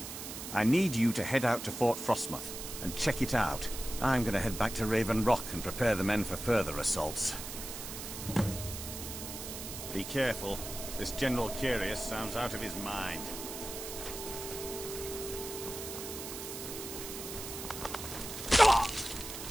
I need you to head out to Fort Frostmoth and check it out. I'm going to head back to Raven Rock and prepare the men for further assaults. Be careful. This General Carius sounds out of his mind.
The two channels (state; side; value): noise; right; hiss, 8 dB below the sound